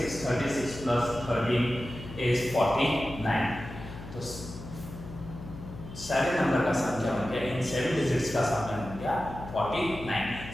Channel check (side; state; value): left; noise; hum, 12 dB below the sound